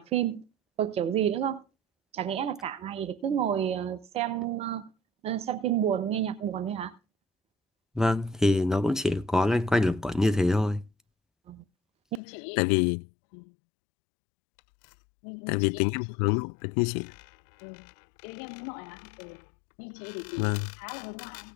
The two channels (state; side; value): drops out; right; at 12.2 s